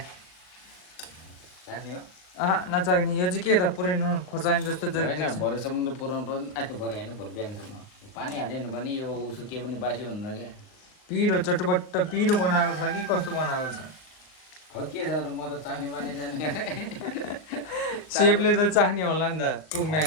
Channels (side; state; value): right; late; 39 ms